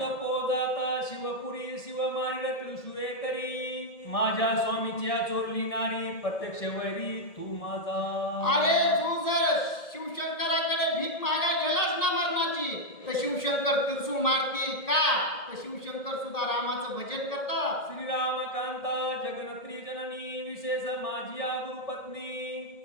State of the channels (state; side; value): late; right; 1.7 ms